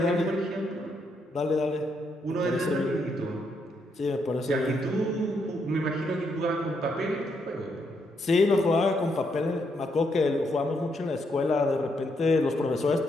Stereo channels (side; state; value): both; normal; correlation 0.77